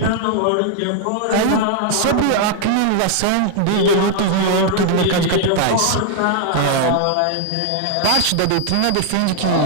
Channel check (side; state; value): both; different; correlation 0.00